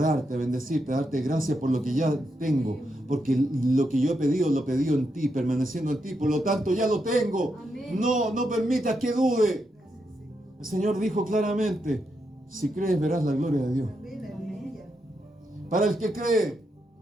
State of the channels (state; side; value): normal; both; correlation 0.83